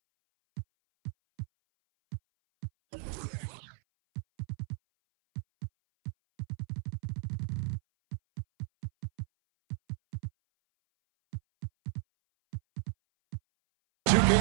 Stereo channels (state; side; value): silent; left; 55 dB below the other